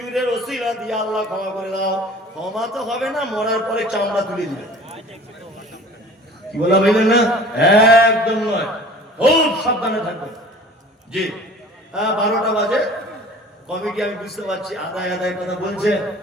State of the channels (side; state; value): both; normal; correlation 0.45